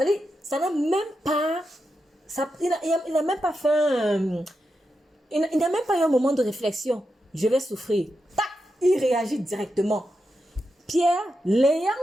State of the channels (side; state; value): both; normal; correlation 0.87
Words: ça n'a même pas... il n'a même pas fait... il n'a même pas eu un moment de réflexion. Je vais souffrir. Tac, il réagit directement. Pierre, l'ayant